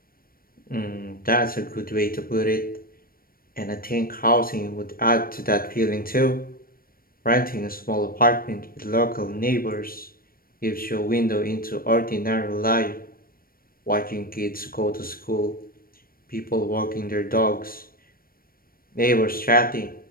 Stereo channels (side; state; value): right; late; 0.43 ms